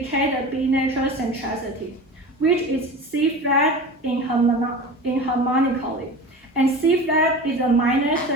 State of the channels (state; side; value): normal; both; correlation 0.33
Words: the B natural centricity, which is C flat in harmonically, and C flat is a minor